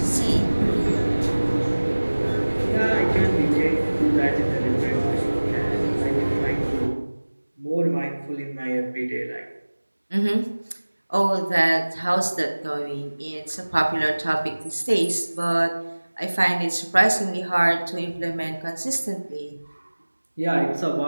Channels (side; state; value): both; inverted; correlation -1.00